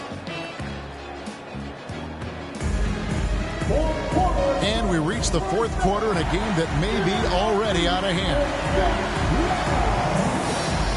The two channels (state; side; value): identical; both; correlation 1.00